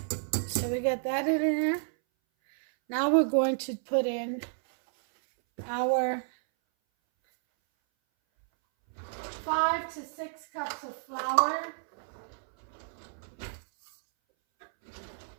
so we got that in there. Now we're going to put in our 5 to 6 cups of flour.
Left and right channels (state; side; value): silent; left; 57 dB below the other